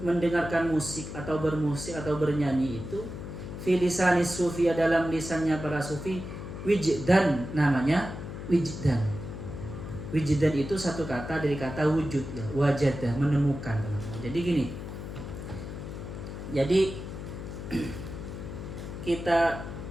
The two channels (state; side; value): noise; left; hum, 9 dB below the sound